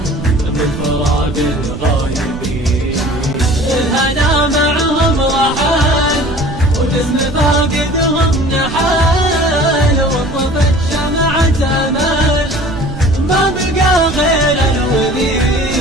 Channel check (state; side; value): noise; right; rumble, 10 dB below the sound